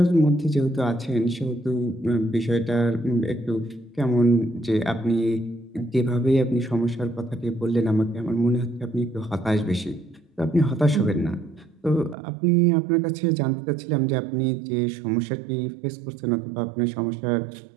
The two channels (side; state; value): left; drops out; at 12.2 s